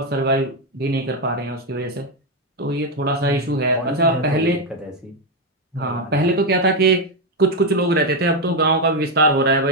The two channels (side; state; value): both; normal; correlation 0.06